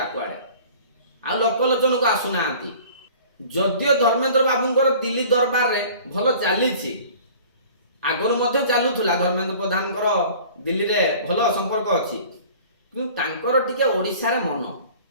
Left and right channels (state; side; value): inverted; both; correlation -0.46